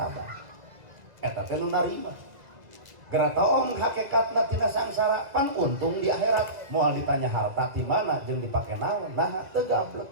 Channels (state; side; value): late; left; 2.0 ms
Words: eta teh nu narima geura taong hakikatna tina sangsara pan untung di akhirat moal ditanya harta ti mana jeung dipake naon nah teu gablek